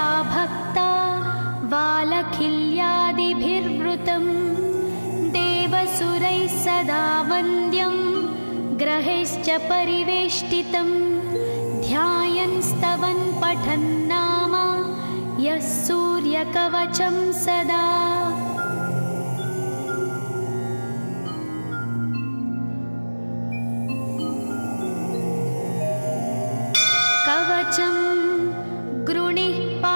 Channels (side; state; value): both; inverted; correlation -1.00